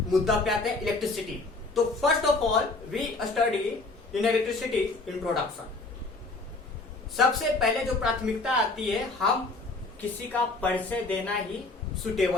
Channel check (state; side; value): quieter; right; 3.4 dB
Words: मुद्दा पे आते हैं इलेक्ट्रिसिटी. तो first of all we study in electricity introduction. सबसे पहले जो प्राथमिकता आती है, हम किसी का परिचय देना ही